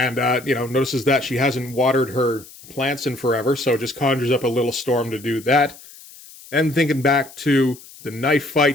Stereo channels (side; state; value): left; noise; hiss, 20 dB below the sound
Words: notices that she hasn't watered her plants in forever, so just conjures up a little storm to do that. And thinking back to the knife